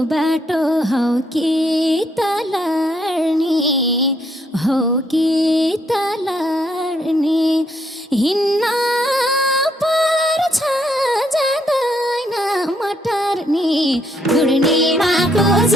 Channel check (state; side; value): normal; both; correlation 0.73